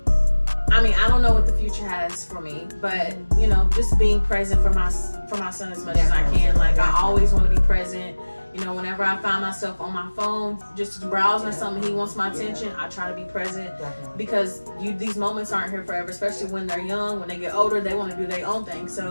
mean, I don't know what the future has for me, but you know, just being present for my son as much as I can. Like I always want to be present. You know, whenever I find myself on my phone just browsing or something, he wants my attention, I try to be present. Definitely. Because these moments aren't here forever, especially when they're young. When they get older, they want to do their own thing.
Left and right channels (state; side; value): inverted; both; correlation -1.00